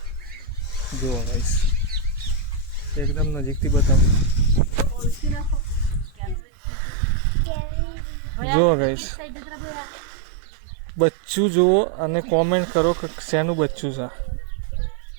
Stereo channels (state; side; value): drops out; left; at 6.4 s